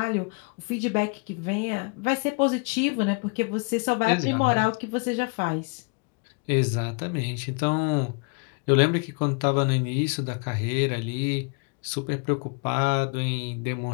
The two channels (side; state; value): right; quieter; 34.9 dB